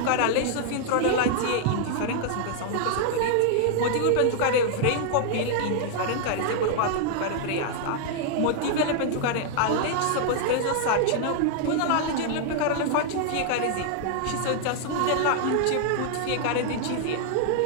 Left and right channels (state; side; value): different; both; correlation -0.01